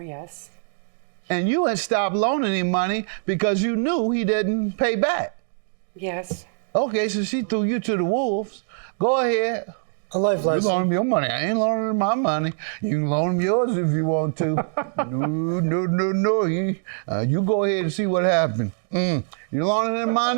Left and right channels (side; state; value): left; silent; digital silence